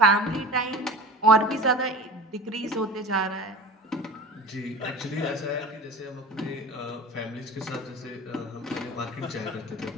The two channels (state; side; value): normal; both; correlation 0.36